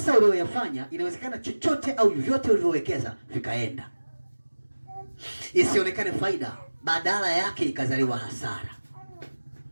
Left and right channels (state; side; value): inverted; both; correlation -1.00